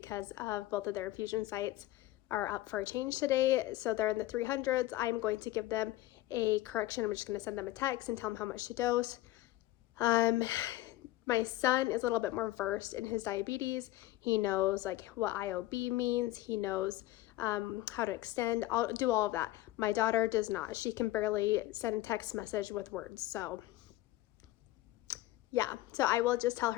of both of their infusion sites are up for a change today. So they're in the 300s. I'm going to give them a correction. I'm just going to send them a text and tell them how much to dose. My son is a little bit more versed in his diabetes. He knows like what IOB means. He knows how to extend. I'll do all of that. My daughter does not. She can barely send a text message with words. So yeah, so I will just tell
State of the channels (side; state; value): right; quieter; 16.6 dB